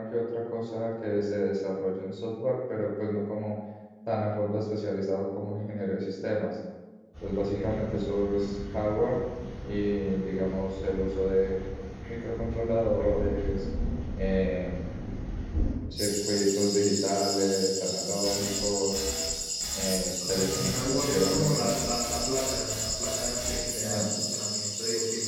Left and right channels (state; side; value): identical; both; correlation 1.00